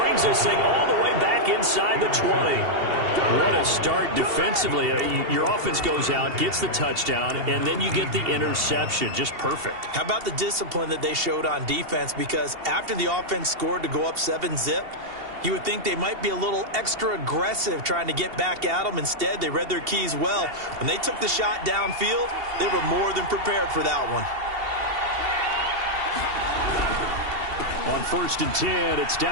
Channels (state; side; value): late; left; 2.7 ms